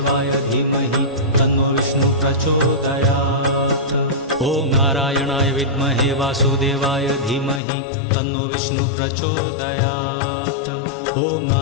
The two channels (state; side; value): drops out; right; at 7.6 s